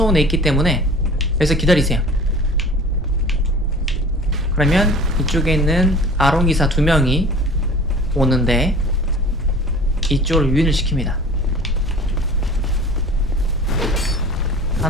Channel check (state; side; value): normal; both; correlation 0.43